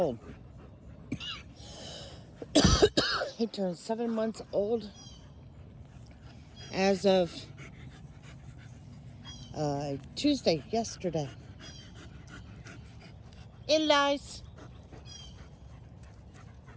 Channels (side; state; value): both; identical; correlation 1.00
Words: He turned 7 months old as of Tuesday, yesterday. Eli's